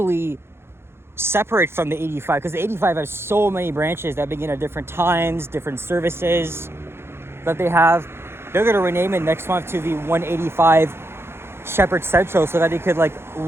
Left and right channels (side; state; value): left; late; 0.12 ms